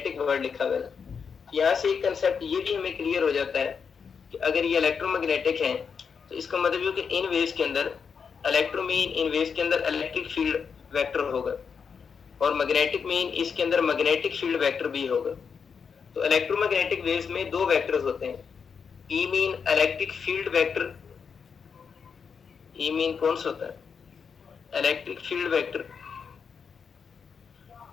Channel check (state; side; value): quieter; right; 6.2 dB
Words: वर्ड लिखा हुआ है। यहाँ से एक कंसेप्ट ये भी हमें क्लियर हो जाता है कि अगर ये इलेक्ट्रोमैग्नेटिक है तो इसका मतलब ये कि इन वेव्स के अंदर इलेक्ट्रो मीन इन वेव्स के अंदर इलेक्ट्रिक फील्ड वेक्टर होगा और मैग्नेटिक मीन इसके अंदर मैग्नेटिक फील्ड वेक्टर भी होगा। तो इलेक्ट्रोमैग्नेटिक वेव्स में दो वेक्टर्स होते हैं, E mean electric field vector, E mean कौन सा होता है इलेक्ट्रिक फील्ड वेक्टर,